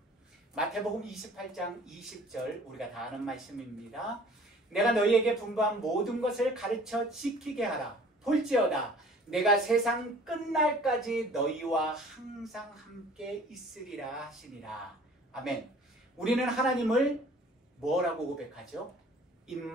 마태복음 28장 20절 우리가 다 아는 말씀입니다. 내가 너희에게 분부한 모든 것을 가르쳐 지키게 하라. 볼지어다 내가 세상 끝날까지 너희와 항상 함께 있으리라 하시니라. 아멘. 우리는 하나님을 뭐라고 고백하죠?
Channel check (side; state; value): both; normal; correlation 0.50